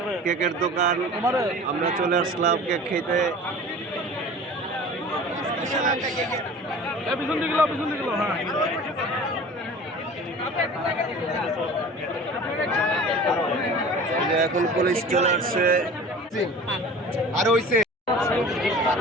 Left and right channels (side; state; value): both; normal; correlation 0.41